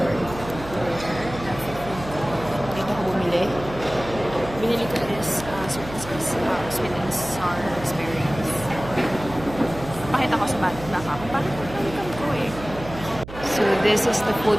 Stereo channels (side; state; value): right; noise; hum, 13 dB below the sound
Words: court. Dito ako bumili. Binili ko is sweet and sour experience. Pakita ko sa baka kung paano ko eh. So, this is the food